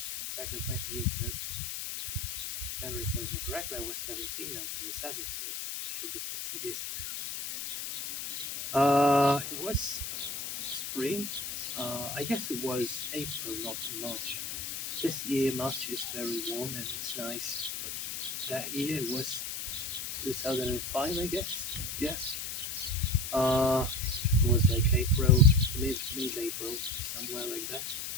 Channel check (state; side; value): noise; left; hiss, 5 dB below the sound